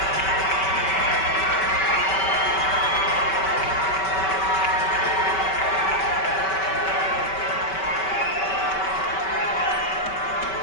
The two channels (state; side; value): late; right; 5.2 ms